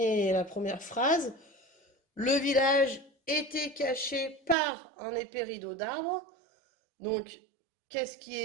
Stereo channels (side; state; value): left; drops out; at 4.5 s